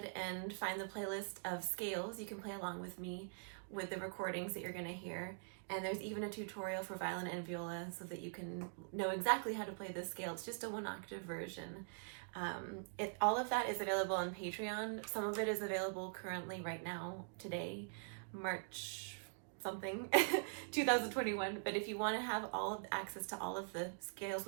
and find the playlist of scales. You can play along with me with the recordings that you're going to hear, and there's even a tutorial for violin and viola so that you can know exactly how to play this scale. It's just a 1-octave version. All of that is available on Patreon. Some of it is available currently right now, today, March something 2021. But if you want to have all of access to all of the scales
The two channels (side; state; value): left; silent; digital silence